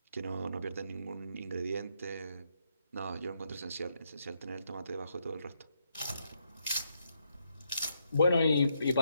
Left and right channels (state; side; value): inverted; both; correlation -0.77